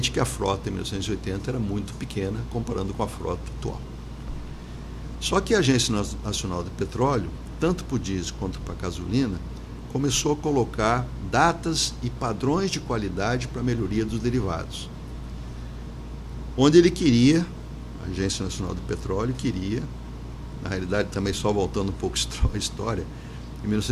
que a frota em 1980 era muito pequena, comparando com a frota atual. Só que a Agência Nacional de Petróleo, tanto para o diesel quanto para a gasolina, começou a colocar datas e padrões de qualidade para a melhoria dos derivados. Onde ele queria, a Agência Nacional de Petróleo queria, na realidade também só voltando um pouco a história, em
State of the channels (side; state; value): both; identical; correlation 1.00